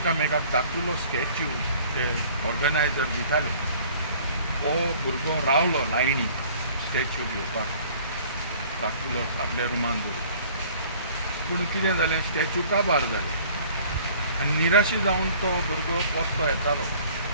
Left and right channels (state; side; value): inverted; both; correlation -0.52